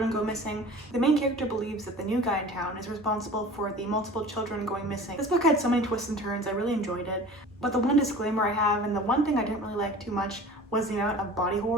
go missing. The main character believes that the new guy in town is responsible for the multiple children going missing. This book had so many twists and turns, I really enjoyed it. But the one disclaimer I have, and the one thing I didn't really like too much, was the amount of body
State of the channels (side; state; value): both; normal; correlation 0.41